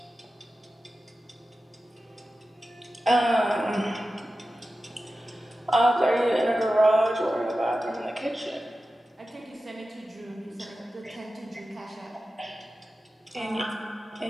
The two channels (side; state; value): both; normal; correlation 0.93